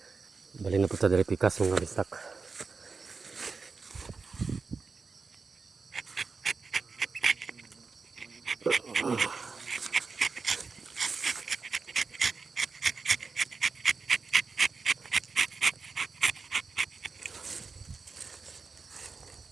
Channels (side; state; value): left; quieter; 4.6 dB